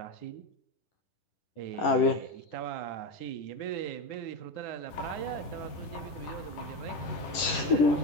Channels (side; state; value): right; late; 11 ms